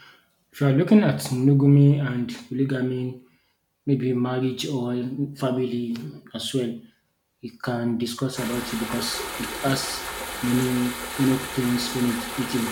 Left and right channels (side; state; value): both; identical; correlation 1.00